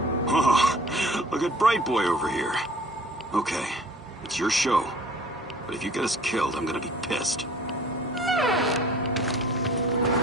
Oh, look at Bright Boy over here. Okay, it's your show. But if you get us killed, I'm gonna be pissed.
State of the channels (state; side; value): normal; both; correlation 0.49